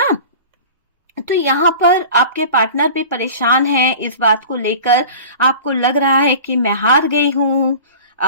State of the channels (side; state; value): both; inverted; correlation -0.38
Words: तो यहाँ पर आपके पार्टनर भी परेशान हैं इस बात को लेकर। आपको लग रहा है कि मैं हार गई हूं,